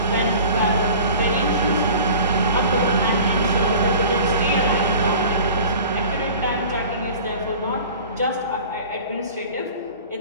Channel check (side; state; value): both; inverted; correlation -0.42